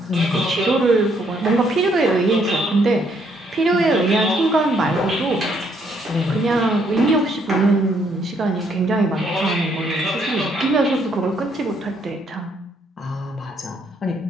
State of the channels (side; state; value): both; normal; correlation 0.70